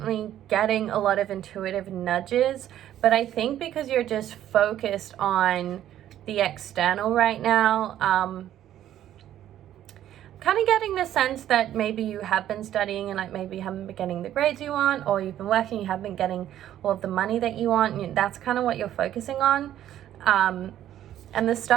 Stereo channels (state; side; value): quieter; left; 11.8 dB